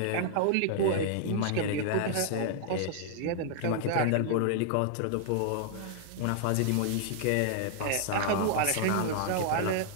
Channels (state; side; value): different; both; correlation -0.01